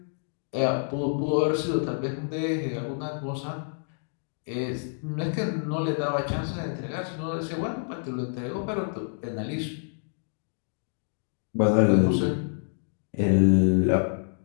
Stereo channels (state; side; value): silent; right; digital silence